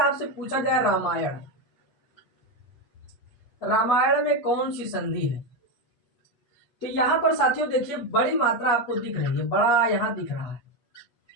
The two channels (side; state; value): right; late; 8.4 ms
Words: पूछा जाए रामायण, रामायण में कौन सी संधि है, तो यहाँ पर साथियों देखिए बड़ी मात्रा आपको दिख रही है, बड़ा यहाँ दिख रहा है।